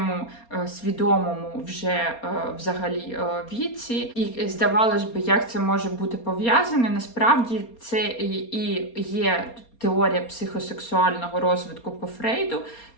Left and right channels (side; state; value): right; late; 4.3 ms